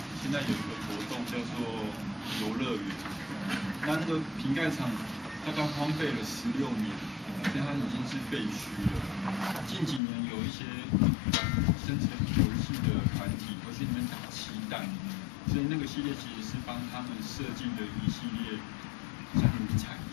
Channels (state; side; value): drops out; right; at 10.0 s